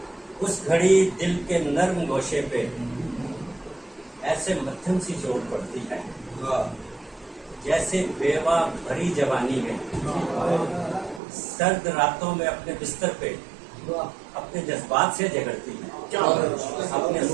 اس گھڑی دل کے نرم گوشے پہ ایسے مدھم سی چوٹ پڑتی ہے، جیسے بیوہ بھری جوانی ہے، سرد راتوں میں اپنے بستر پہ اپنے جذبات سے جھگڑتی ہے، اپنے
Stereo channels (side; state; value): left; drops out; at 11.2 s